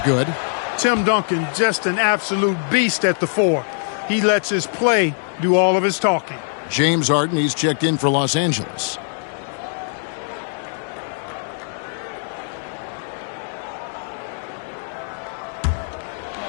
good. Tim Duncan, just an absolute beast at the 4. He lets his play do all of his talking. James Harden, he's checked in for Los Angeles.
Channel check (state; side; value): silent; right; 64 dB below the other